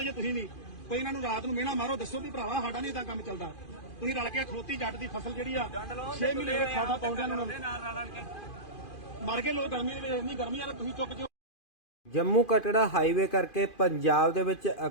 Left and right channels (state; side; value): late; right; 2.5 ms